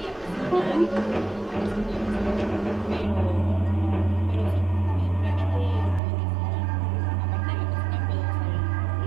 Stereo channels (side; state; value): left; drops out; at 6.0 s